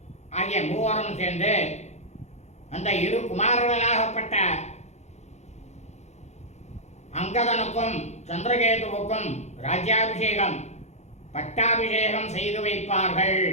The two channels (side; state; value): right; late; 0.33 ms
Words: ஆகிய மூவரும் சேர்ந்து அந்த இரு குமாரர்களாகப்பட்ட அங்கதனுக்கும் சந்திரகேதுவுக்கும் ராஜ்யாபிஷேகம் பட்டாபிஷேகம் செய்து வைப்பார்கள்.